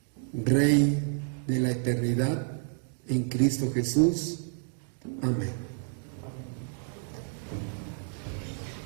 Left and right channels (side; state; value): left; silent; 58 dB below the other